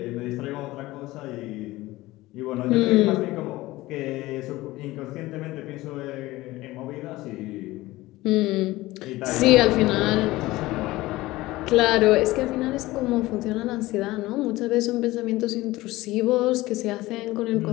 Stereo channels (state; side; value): quieter; right; 18.5 dB